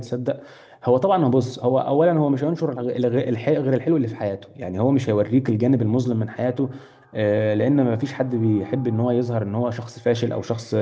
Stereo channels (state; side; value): identical; both; correlation 1.00